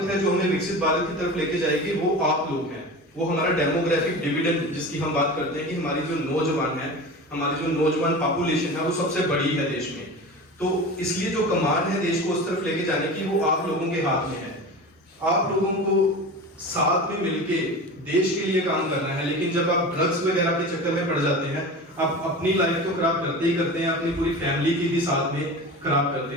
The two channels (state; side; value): normal; both; correlation 0.31